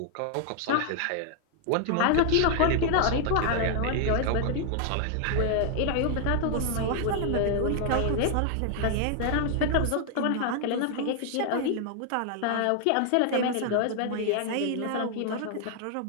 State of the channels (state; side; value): different; both; correlation 0.00